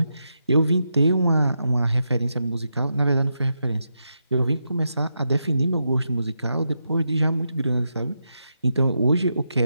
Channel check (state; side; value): inverted; both; correlation -0.85